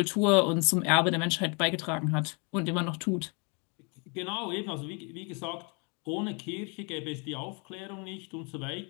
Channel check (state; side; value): quieter; right; 33.9 dB